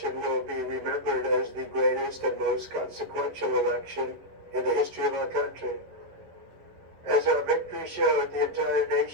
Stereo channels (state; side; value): late; left; 11 ms